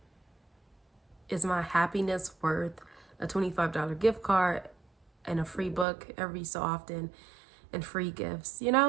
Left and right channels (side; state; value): left; drops out; at 5.9 s